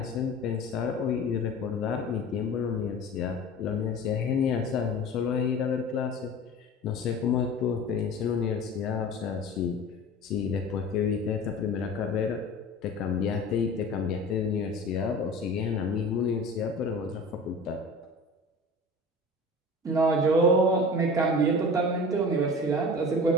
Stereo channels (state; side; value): normal; both; correlation 0.38